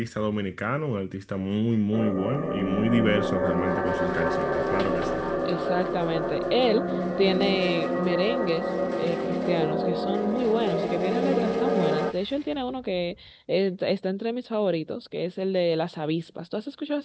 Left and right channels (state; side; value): identical; both; correlation 1.00